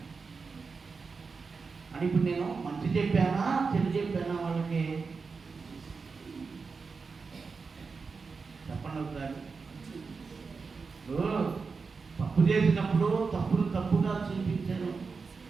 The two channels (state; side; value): quieter; left; 4.8 dB